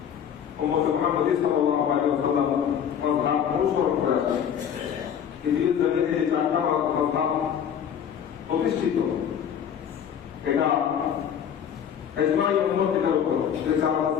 উম্মত মুহাম্মদ সাল্লাল্লাহু আলাইহি ওয়াসাল্লাম মাযহাব অনুসরণ করে আসছে। পৃথিবীর জমিনে যে চারটা মাযহাব প্রতিষ্ঠিত, এটা ইজমাই উম্মতের উপর যে চার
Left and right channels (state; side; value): quieter; right; 8.6 dB